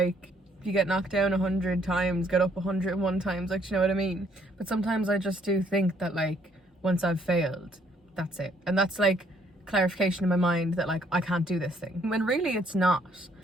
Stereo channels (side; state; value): both; normal; correlation 0.67